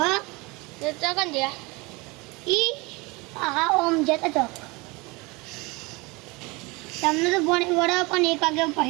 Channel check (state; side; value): quieter; left; 25.4 dB